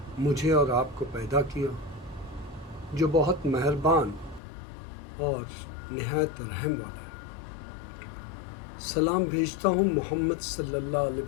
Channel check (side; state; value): right; drops out; at 4.4 s